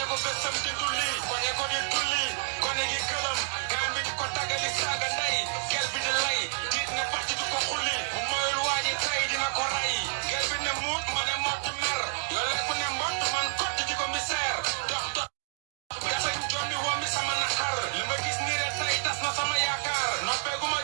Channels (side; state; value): left; silent; digital silence